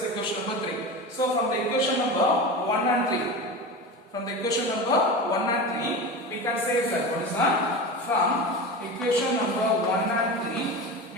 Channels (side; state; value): both; normal; correlation 0.27